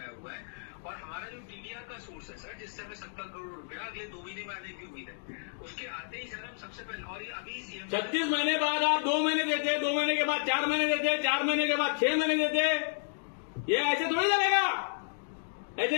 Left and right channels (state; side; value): silent; right; digital silence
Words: हुआ है, और हमारा जो टीडीआर का सोर्स है सर, जिससे हमें 70 करोड़ रुपया अगले 2 महीने में आने की उम्मीद है, उसके आते ही सर हम सबसे पहले, और ये अभी सीएम 36 महीने बाद आप 2 महीने देते, 2 महीने के बाद 4 महीने देते, 4 महीने के बाद 6 महीने देते। ये ऐसे थोड़ी चलेगा, ऐसे